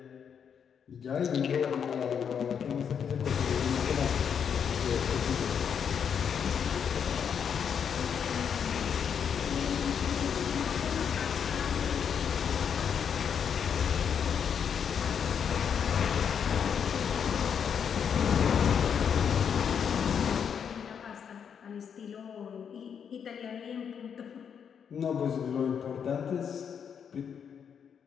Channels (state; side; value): quieter; right; 7.5 dB